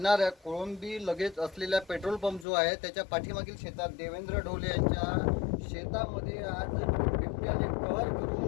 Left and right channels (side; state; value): right; drops out; at 2.5 s